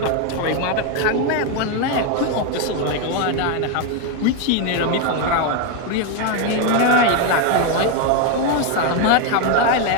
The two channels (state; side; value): different; both; correlation 0.01